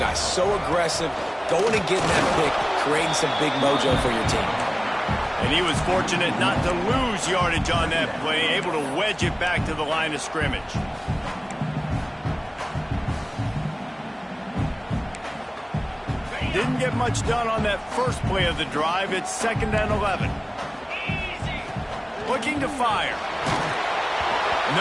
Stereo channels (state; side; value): identical; both; correlation 1.00